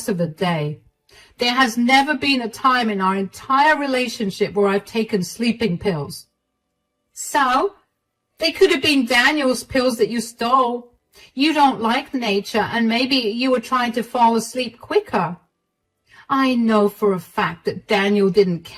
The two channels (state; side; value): identical; both; correlation 1.00